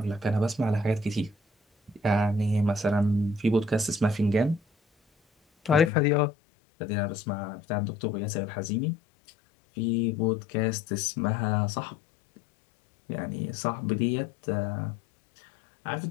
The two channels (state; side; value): drops out; right; at 5.9 s